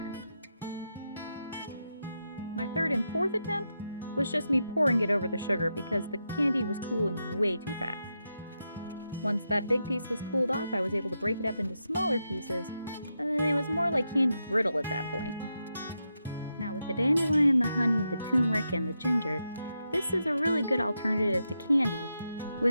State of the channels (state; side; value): inverted; both; correlation -0.86